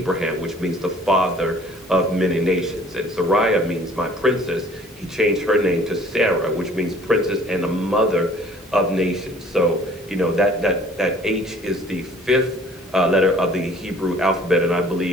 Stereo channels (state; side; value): normal; both; correlation 0.53